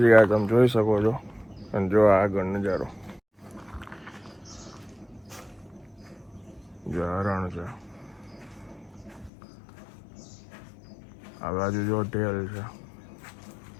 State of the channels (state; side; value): drops out; right; at 9.3 s